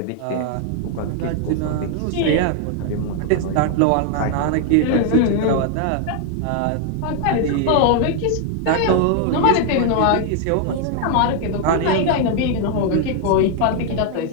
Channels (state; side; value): different; both; correlation 0.00